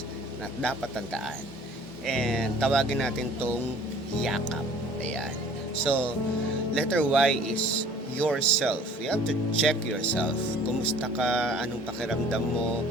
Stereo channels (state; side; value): normal; both; correlation 0.50